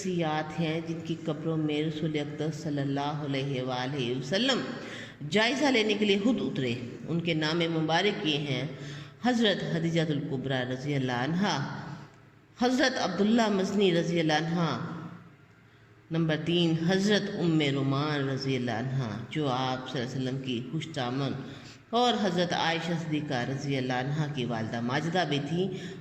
ہیں جن کی قبروں میں رسول اقدس صلی اللہ علیہ وآلہ وسلم جائزہ لینے کے لیے خود اترے۔ ان کے نام مبارک یہ ہیں: حضرت خدیجہ الکبریٰ رضی اللہ عنہا، حضرت عبداللہ مزنی رضی اللہ عنہ، نمبر 3 حضرت ام رومان رضی اللہ عنہ جو آپ صلی اللہ علیہ وسلم کی خوش دامن، اور حضرت عائشہ صدیقہ رضی اللہ عنہ کی والدہ ماجدہ بھی تھی،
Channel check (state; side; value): identical; both; correlation 1.00